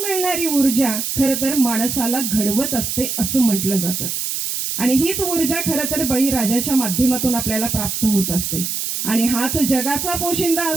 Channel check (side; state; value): right; noise; hiss, 3 dB below the sound